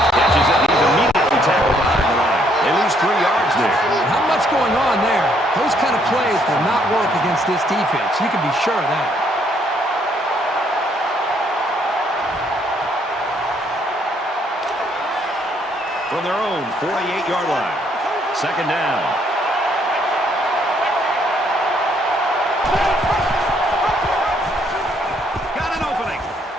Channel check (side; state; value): both; normal; correlation 0.68